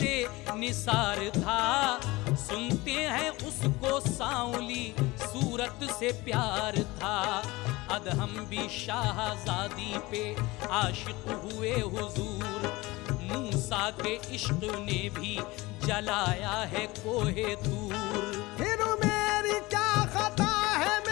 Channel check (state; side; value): quieter; right; 21.4 dB